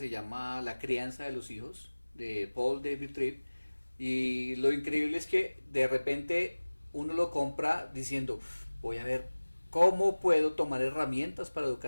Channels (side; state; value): both; inverted; correlation -1.00